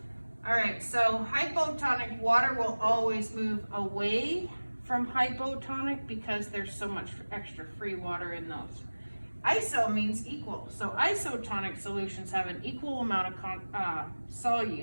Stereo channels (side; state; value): both; inverted; correlation -1.00